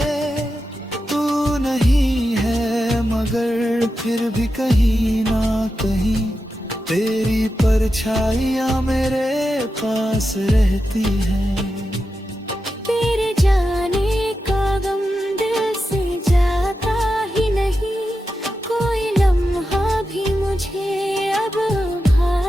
तू नहीं है मगर फिर भी कहीं ना कहीं, तेरी परछाइयाँ मेरे पास रहती हैं। तेरे जाने का गम दिल से जाता ही नहीं, कोई लम्हा भी मुझे अब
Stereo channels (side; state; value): both; normal; correlation 0.90